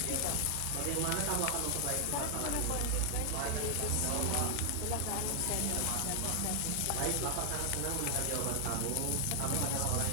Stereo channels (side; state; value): both; different; correlation 0.00